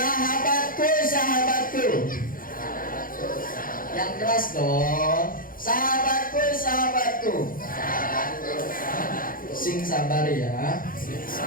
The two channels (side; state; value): right; late; 0.41 ms